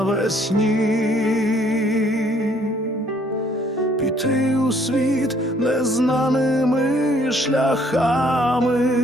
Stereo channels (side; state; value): both; normal; correlation 0.63